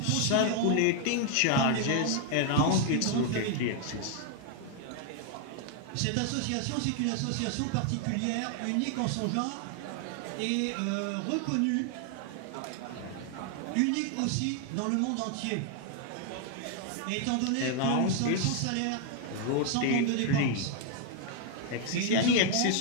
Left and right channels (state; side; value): different; both; correlation 0.00